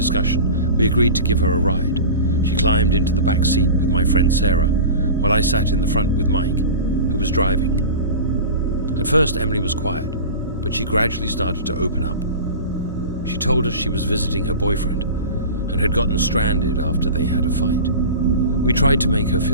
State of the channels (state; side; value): inverted; both; correlation -0.33